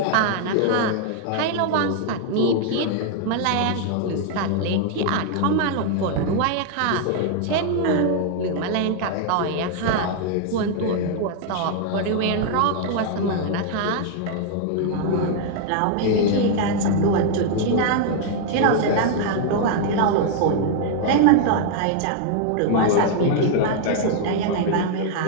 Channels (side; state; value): both; different; correlation 0.00